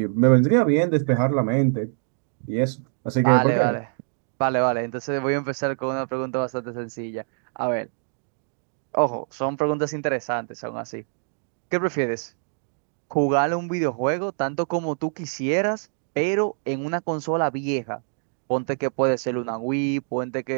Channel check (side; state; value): left; silent; 56 dB below the other